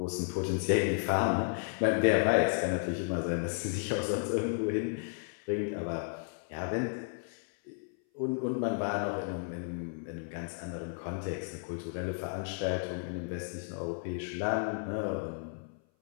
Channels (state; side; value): silent; right; 56 dB below the other